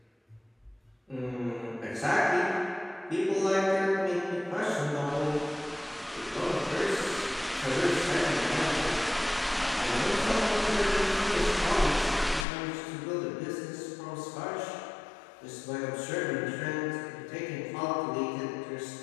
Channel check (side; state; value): right; drops out; at 12.5 s